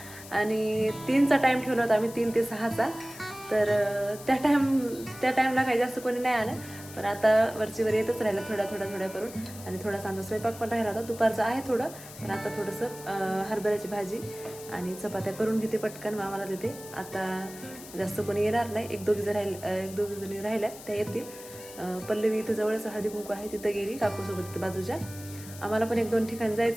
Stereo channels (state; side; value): noise; left; hiss, 16 dB below the sound